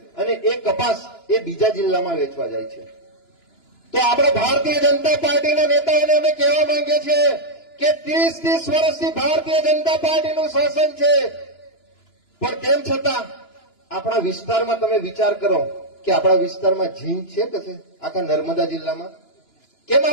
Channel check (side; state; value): right; late; 2.9 ms